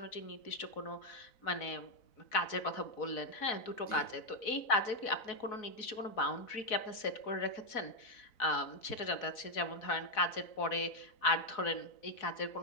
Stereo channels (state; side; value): late; right; 4.0 ms